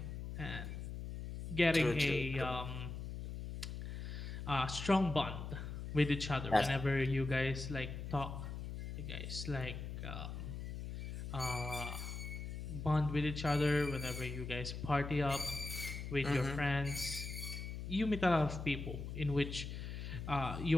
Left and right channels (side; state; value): left; noise; hum, 6 dB below the sound